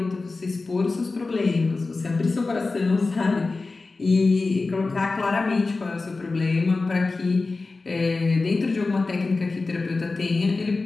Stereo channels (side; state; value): right; quieter; 3.7 dB